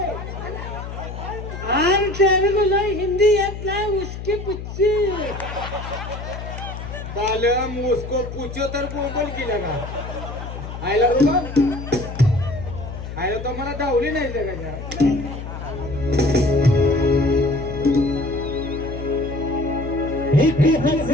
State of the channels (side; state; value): left; noise; hum, 9 dB below the sound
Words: आम तेरे को हिंदी येत नाही उसकी पुच्ची. बालम उसको पूछो तर बोल केला का आयला बाबा आयला तो मला धावली नाही जगाच्या एक